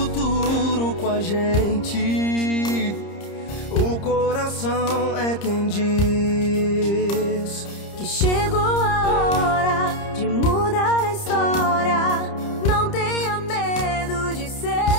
com a gente, o coração é quem diz que chegou a hora de mudar a história. Não tenha medo de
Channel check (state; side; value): late; right; 30 ms